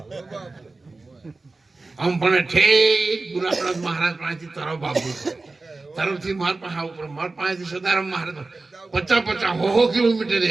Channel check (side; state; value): left; quieter; 3.5 dB